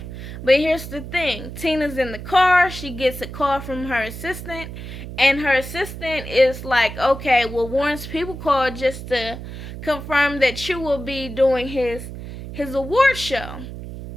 But here's the thing. Tina's in the car. She gets a call from her assistant. And her assistant is like, okay, well, Warren's people called just to confirm that you will be doing his award show.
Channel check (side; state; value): right; noise; hum, 10 dB below the sound